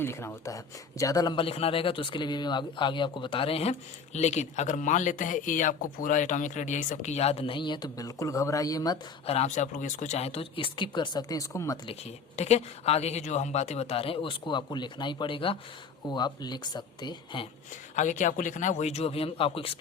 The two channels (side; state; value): right; quieter; 5.4 dB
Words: लिखना होता है। ज़्यादा लंबा लिखना रहेगा तो उसके लिए भी आगे आपको बता रहे हैं। लेकिन अगर मान लेते हैं ये आपको पूरा एटॉमिक रेडियस सबकी याद नहीं है तो बिल्कुल घबराइए मत, आराम से आप लोग इसको चाहें तो स्किप कर सकते हैं, इसको मत लिखिए, ठीक है। आगे की जो हम बातें बता रहे हैं उसको आपको लिखना ही पड़ेगा, वो आप लिख सकते हैं। आगे क्या आपको लिखना है, वही जो अभी हम आपको